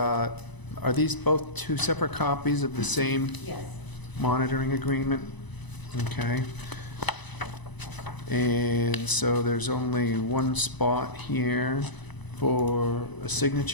are these both two separate copies of the same Yes. monitoring agreement? Okay. And so there's only one spot here for a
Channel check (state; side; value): late; right; 1.0 ms